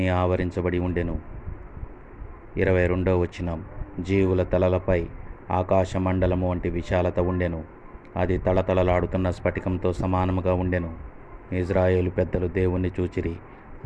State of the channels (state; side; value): identical; both; correlation 1.00